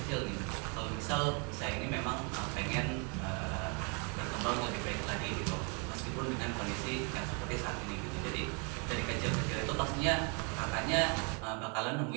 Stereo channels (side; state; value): left; quieter; 35.6 dB